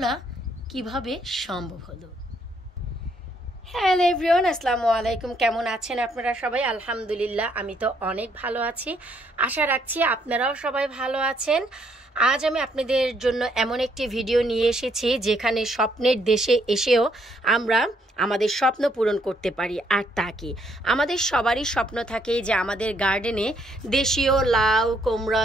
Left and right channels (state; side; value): normal; both; correlation 0.71